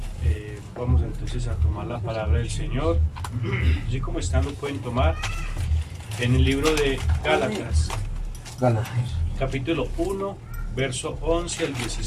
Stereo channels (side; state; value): both; identical; correlation 1.00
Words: Vamos entonces a tomar la palabra del Señor. Así como están lo pueden tomar en el libro de Gálatas. Capítulo 1, verso 11 al